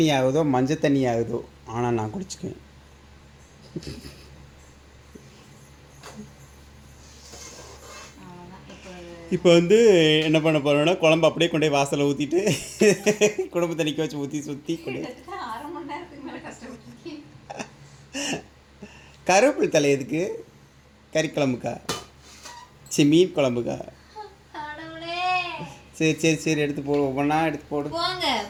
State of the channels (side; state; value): both; identical; correlation 1.00